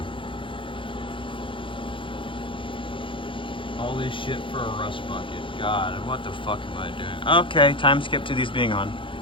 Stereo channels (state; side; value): late; right; 0.25 ms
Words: All this shit for a rust bucket. God, what the fuck am I doing? Okay, time skip to these being on.